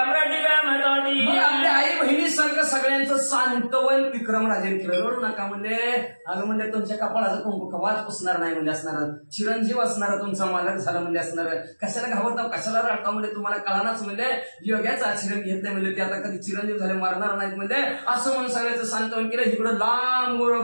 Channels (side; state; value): both; inverted; correlation -1.00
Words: आपल्या आई बहिणीसारखं सगळ्यांचं सांत्वन विक्रमराजेने केलं. रडू नका म्हणजे अगं म्हणजे तुमच्या कपाळाचं कुंकू कवाच पुसणार नाही म्हणजे असणार. चिरंजीव असणार तुमचा मालक झाला म्हणजे असणार. कशाला घाबरता कशाला रडता म्हणजे तुम्हाला कळानाच म्हणजे योग्याचं आचरण घेतलं म्हणजे ते आता कधी चिरंजीव झाले मारणार नाहीत म्हणजे असं म्हणून सगळ्याचं सांत्वन केलं. इकडं लांब